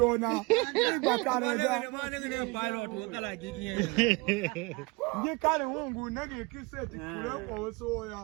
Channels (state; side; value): quieter; left; 26.3 dB